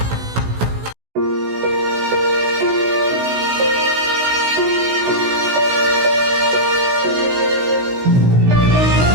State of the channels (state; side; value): late; left; 16 ms